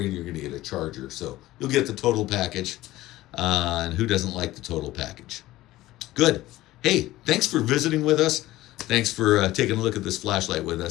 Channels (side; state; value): right; quieter; 16.6 dB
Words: and you're going to get a charger. So you'll get the total package. And who doesn't like the total package? Good. Hey, thanks for visiting with us. Thanks for taking a look at this flashlight with